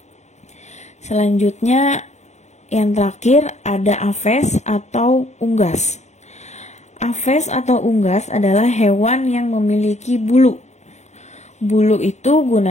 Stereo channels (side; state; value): right; late; 0.33 ms